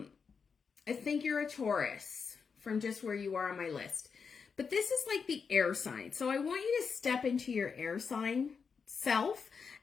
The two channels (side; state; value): right; quieter; 5.7 dB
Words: think you're a Taurus from just where you are on my list. But this is like the air sign. So I want you to step into your air sign self.